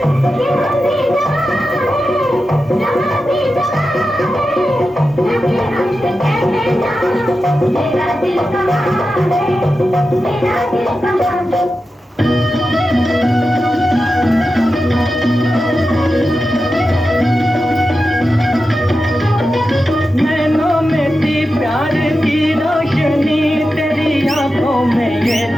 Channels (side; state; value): both; normal; correlation 0.91